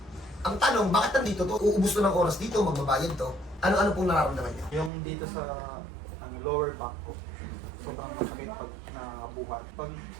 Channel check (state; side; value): drops out; left; at 4.9 s